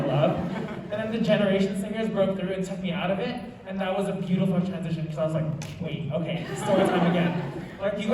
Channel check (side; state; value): both; identical; correlation 1.00